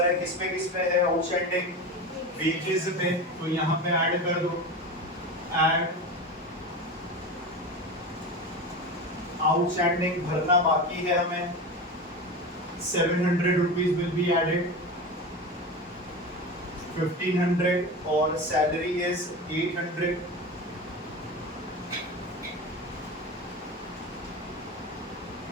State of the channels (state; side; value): normal; both; correlation 0.26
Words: है, किस पे है आउटस्टैंडिंग, वेजेस पे, तो यहाँ पे ऐड कर दो, ऐड आउटस्टैंडिंग भरना बाकी है हमें, 700 रुपीज विल बी एडेड, 1500 और सैलरी इज 800।